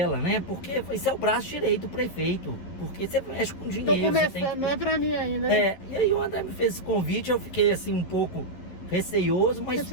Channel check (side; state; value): right; late; 11 ms